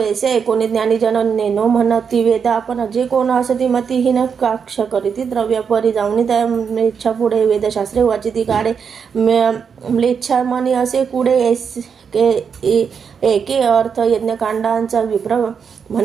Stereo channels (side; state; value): left; quieter; 6.5 dB